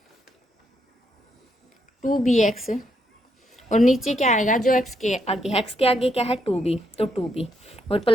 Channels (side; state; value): both; normal; correlation 0.77